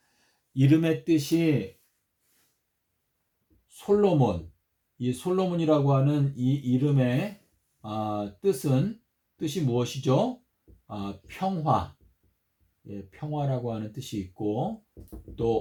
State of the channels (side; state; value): both; identical; correlation 1.00